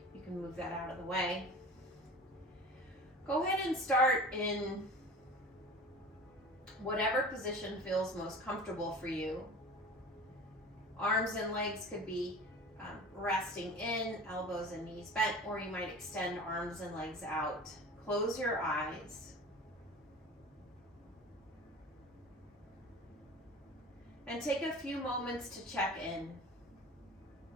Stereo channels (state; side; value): normal; both; correlation 0.38